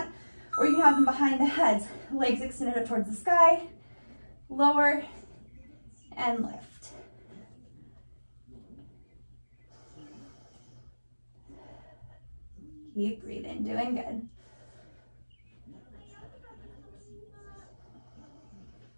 or you can have them behind the heads, legs extended up towards the sky, lower, and lift. Keep breathing, doing good.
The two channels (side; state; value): both; inverted; correlation -1.00